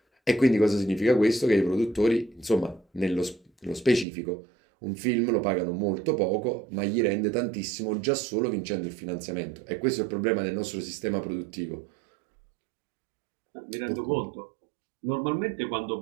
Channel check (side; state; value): left; drops out; at 4.0 s